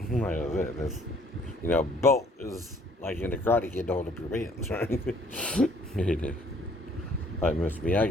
Like I said, it's, belt is like in the Karate Kid to hold up your pants, right? It is. Like Mr.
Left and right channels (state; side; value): normal; both; correlation 0.60